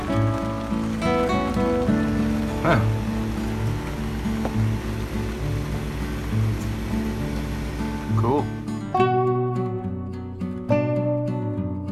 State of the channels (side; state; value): both; identical; correlation 1.00